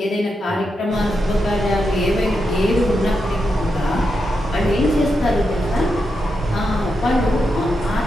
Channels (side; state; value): both; normal; correlation 0.86